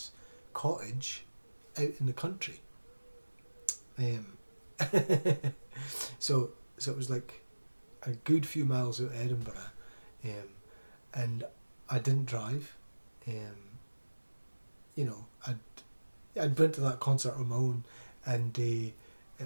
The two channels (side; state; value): both; inverted; correlation -1.00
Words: cottage out in the country. So it was like a good few miles out of Edinburgh, and I didn't drive. I'd went to that concert on my own, and